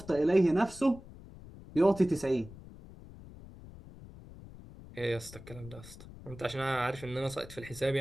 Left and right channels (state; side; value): noise; left; rumble, 17 dB below the sound